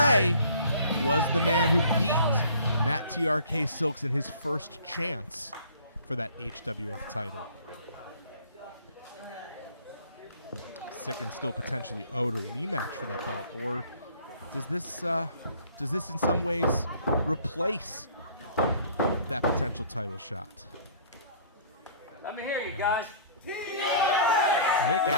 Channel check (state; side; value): inverted; both; correlation -0.51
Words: was the man who beat Matt TRK Silks in his first chance for that HWF title. Sicend still potentially owed a rematch for that belt, or does this in some ways replace that potential title shot? Let me hear you guys. Nick